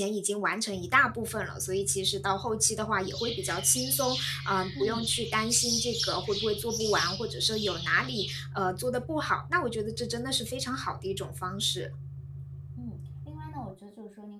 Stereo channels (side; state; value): both; identical; correlation 1.00